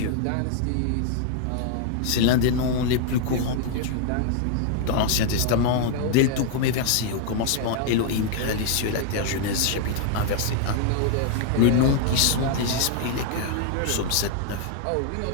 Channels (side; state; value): both; different; correlation 0.00